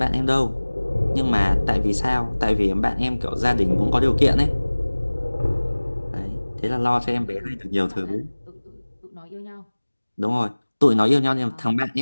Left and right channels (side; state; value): both; inverted; correlation -1.00